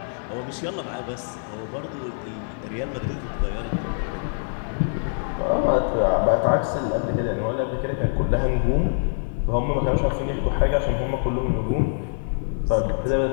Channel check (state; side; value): silent; right; digital silence